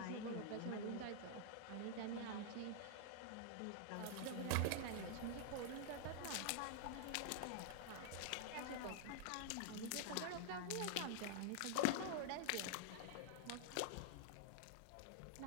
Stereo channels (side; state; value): both; different; correlation -0.01